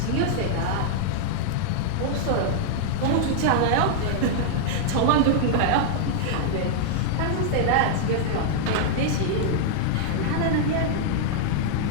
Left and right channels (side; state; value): both; different; correlation -0.01